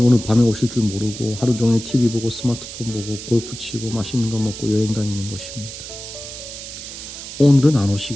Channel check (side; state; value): right; noise; hiss, 11 dB below the sound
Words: 오늘 밤에 오실 줄 모르고 하루 종일 TV 보고 스마트폰 보고 골프 치고 맛있는 거 먹고 여행 다니는 것입니다. 오늘은 안